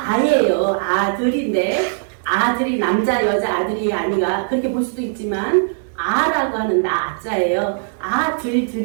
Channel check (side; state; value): left; silent; digital silence